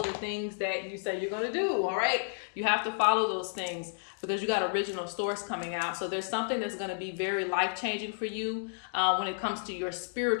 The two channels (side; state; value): right; silent; digital silence